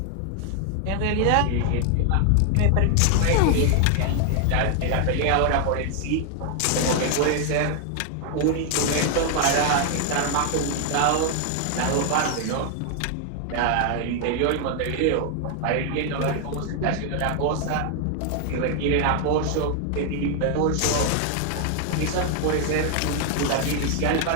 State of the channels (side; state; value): both; different; correlation 0.00